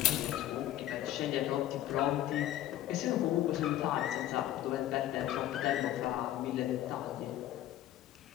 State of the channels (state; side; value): quieter; right; 13.1 dB